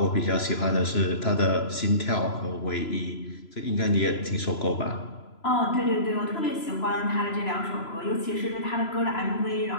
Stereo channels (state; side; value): late; right; 3.0 ms